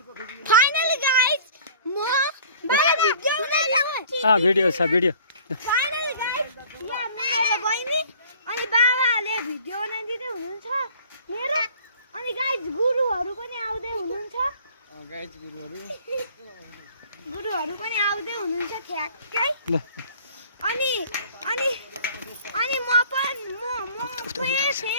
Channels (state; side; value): inverted; both; correlation -0.50